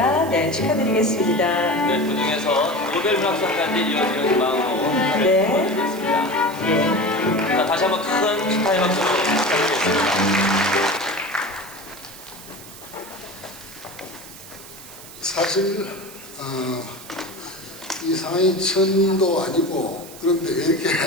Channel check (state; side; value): noise; right; hiss, 17 dB below the sound